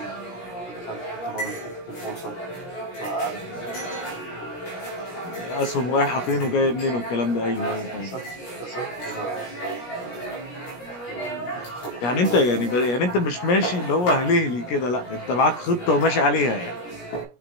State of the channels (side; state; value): right; late; 17 ms